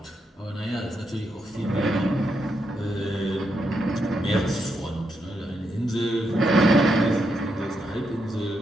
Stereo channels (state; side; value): normal; both; correlation 0.81